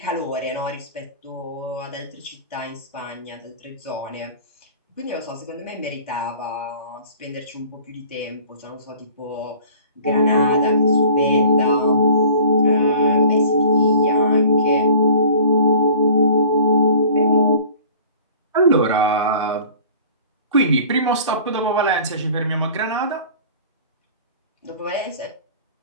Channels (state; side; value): inverted; both; correlation -0.46